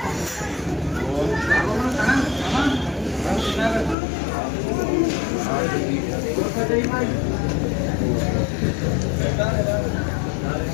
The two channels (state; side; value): drops out; right; at 4.0 s